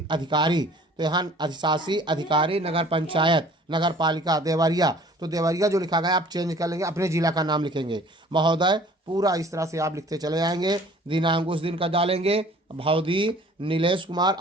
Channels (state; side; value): normal; both; correlation 0.51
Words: अधिकारी। तो यहाँ अधिशासी अधिकारी नगर पंचायत, नगर पालिका देवरिया। तो देवरिया जो लिखा गया आप चेंज कर लेंगे, अपने जिला का नाम लिखेंगे। महोदय, पूरा इस तरह से आप लिखते चले जाएंगे। दिनांक उस दिन का डालेंगे। भौदी नीलेश कुमार